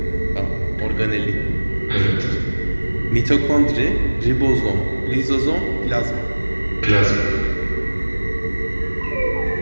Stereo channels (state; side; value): inverted; both; correlation -1.00